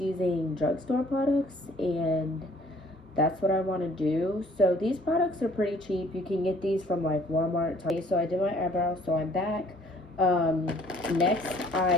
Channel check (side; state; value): both; normal; correlation 0.58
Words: drugstore products, and that's what I want to do. So these products are pretty cheap. You can get these from like Walmart. So I did my eyebrows, so I'm back. Next,